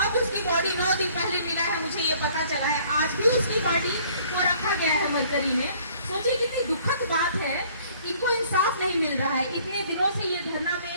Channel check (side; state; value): both; inverted; correlation -0.57